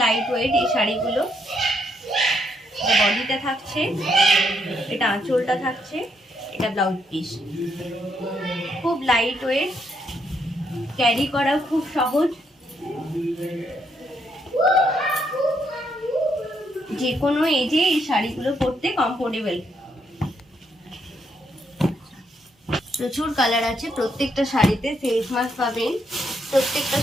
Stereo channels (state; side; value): normal; both; correlation 0.75